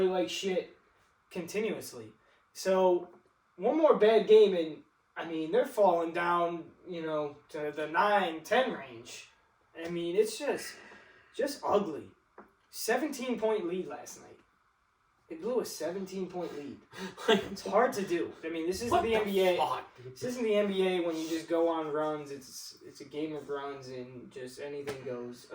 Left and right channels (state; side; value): identical; both; correlation 1.00